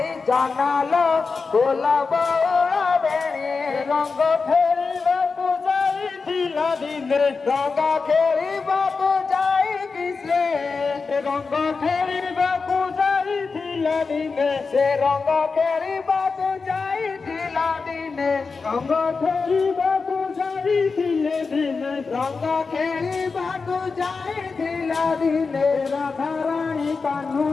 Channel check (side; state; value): right; quieter; 4.6 dB